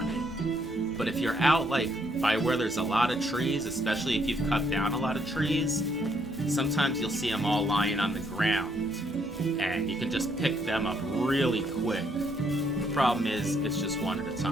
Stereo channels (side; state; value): both; normal; correlation 0.71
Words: it. But if you're out like by where there's a lot of trees, especially if you've cut down a lot of trees, sometimes you'll see them all lying on the ground, and you can just pick them up really quick. The problem is, it's just one at a